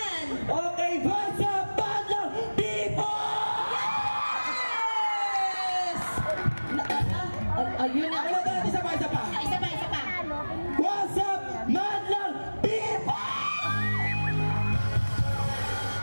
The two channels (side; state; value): both; inverted; correlation -1.00